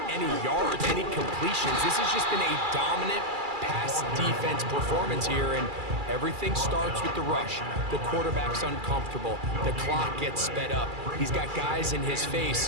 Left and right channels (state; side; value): late; left; 2.3 ms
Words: any yards, any completions. This has just been a dominant pass defense performance here, and everything starts with the rush. The quarterback's uncomfortable. The clock gets sped up. He's got guys in his